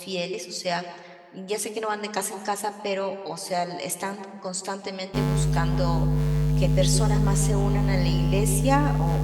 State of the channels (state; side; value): identical; both; correlation 1.00